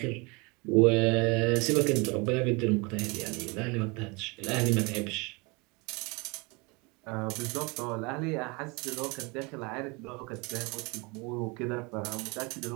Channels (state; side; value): quieter; left; 28.1 dB